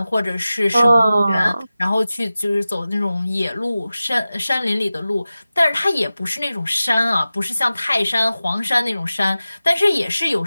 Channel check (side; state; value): both; inverted; correlation -0.96